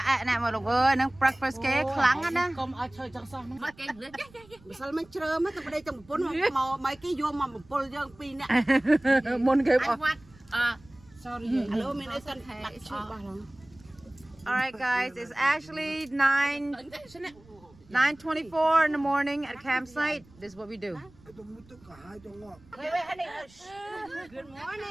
nè mà lục ơi, nó breakfast cái kháng á nè. Come ở chơi trong xong. Sao mình chơi mấy cái đây trong bốn mà mấy cái vô mà một pol dương pin nè. Môn cái Sorry. Hello, mình đã sẵn đặt chụp vào rồi. Alright guys, it's actually 9:24 in the morning at campsite. This is what we do. Good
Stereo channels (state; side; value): noise; right; rumble, 26 dB below the sound